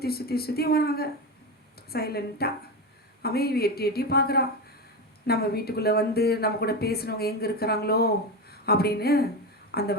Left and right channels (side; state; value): both; normal; correlation 0.18